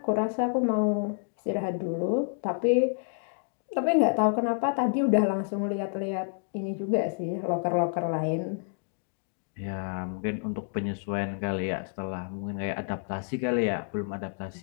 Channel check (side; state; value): right; silent; digital silence